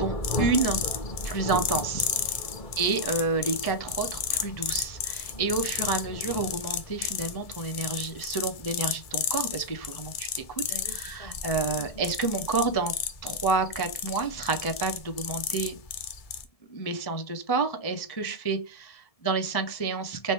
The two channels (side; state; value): right; late; 1.7 ms